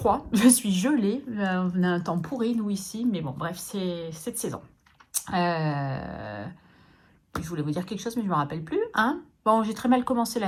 je suis gelée. On a un temps pourri, nous, ici. Mais bon, bref, c'est cette saison. Je voulais vous dire quelque chose, mais je ne me rappelle plus. Hein, bon, j'ai très mal commencé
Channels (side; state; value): both; identical; correlation 1.00